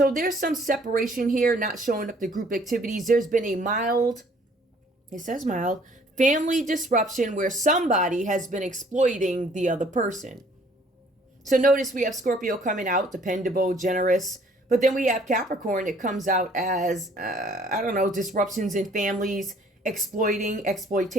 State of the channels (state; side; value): normal; both; correlation 0.59